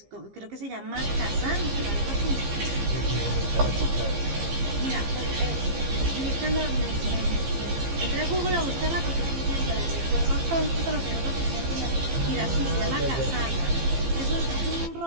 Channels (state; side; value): late; left; 15 ms